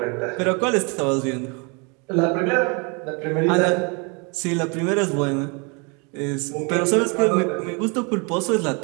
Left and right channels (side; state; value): left; quieter; 32.5 dB